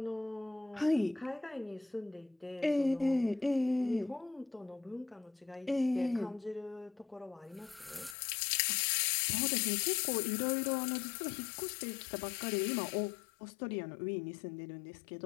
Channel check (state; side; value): drops out; right; at 8.2 s